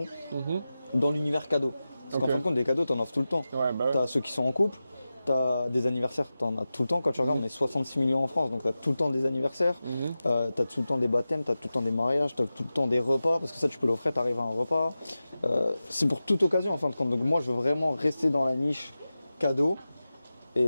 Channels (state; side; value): inverted; both; correlation -0.94